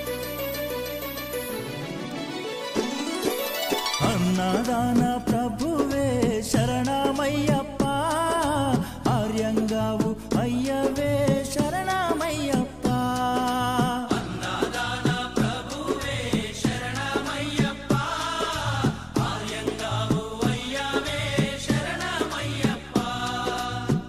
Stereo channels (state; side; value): identical; both; correlation 1.00